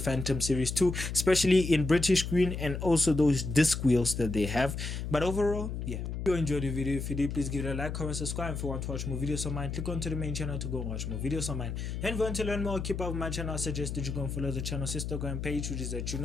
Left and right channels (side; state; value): left; noise; hum, 4 dB below the sound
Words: Series 2, especially in British green and also those disc wheels that they have. But overall, yeah. If you enjoyed the video, if you did, please give it a like, comment, subscribe. If you want to watch more videos of mine, click onto the main channel to go and watch more videos of mine. And if you want to learn more, keep up with my channel, I suggest that you go and follow the channel's Instagram page, which is at